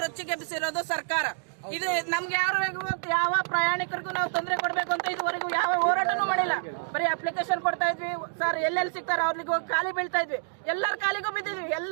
ರೊಚ್ಚಿಗೆಬ್ಬಿಸಿರೋದು ಸರ್ಕಾರ. ಇದು ನಮ್ಗೆ ಯಾವ ಪ್ರಯಾಣಿಕರಿಗೂ ನಾವು ತೊಂದರೆ ಕೊಡ್ಬೇಕು ಅಂತ ಇದುವರೆಗೂ ಯಾವ ಹೋರಾಟನೂ ಮಾಡಿಲ್ಲ. ಬರೀ ಅಪ್ಲಿಕೇಶನ್ ಕೊಡ್ತಾ ಇದ್ವಿ ಸರ್, ಎಲ್ಲೆಲ್ಲಿ ಸಿಗ್ತಾರ ಅವ್ರಿಗೆ ಹೋಗಿ ಖಾಲಿ ಬೀಳ್ತಾ ಇದ್ವಿ. ಎಲ್ಲರ ಕಾಲಿಗೂ ಬಿದ್ದಿದ್ವಿ,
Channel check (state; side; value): silent; left; digital silence